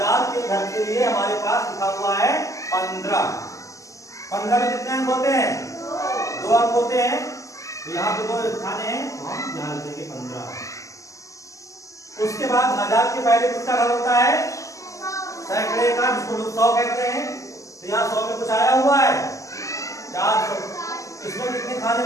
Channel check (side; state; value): right; late; 0.16 ms